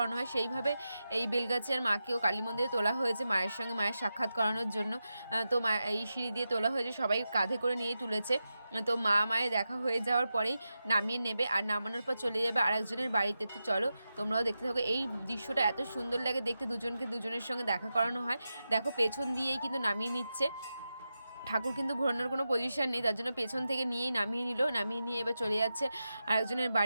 হয়। সেইভাবে এই বেলগাছিয়ার মাকেও কালী মন্দিরে তোলা হয়েছে মায়ের সঙ্গে মায়ের সাক্ষাৎ করানোর জন্য। তো মা এই সিঁড়ি দিয়ে তোলা হয়েছে, সবাই কাঁধে করে নিয়েই তুলেছে। তো মা মায়ের দেখা হয়ে যাওয়ার পরেই নামিয়ে নেবে আর নামানোর পর চলে যাবে আরেকজনের বাড়িতে। তো চলো তোমরাও দেখতে থাকো। এই দৃশ্যটা এত সুন্দর লাগে দেখতে, দুজনকে দুজনের সঙ্গে দেখা করানো হয়। দেখো পেছন দিয়েই কিন্তু নামিয়ে নিচ্ছে ঠাকুর কিন্তু ঘোরানোর কোনো পজিশন নেই, তার জন্য পেছন থেকে নিয়েই নামিয়ে নিল, নামিয়ে নিয়ে এবার চলে যাচ্ছে আরেকজনের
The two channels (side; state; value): both; inverted; correlation -0.90